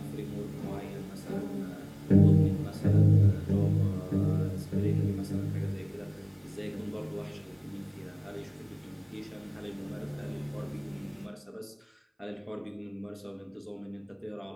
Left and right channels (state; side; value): identical; both; correlation 1.00